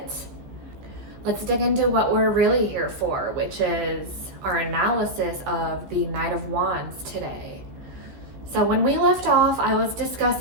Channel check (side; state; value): left; late; 15 ms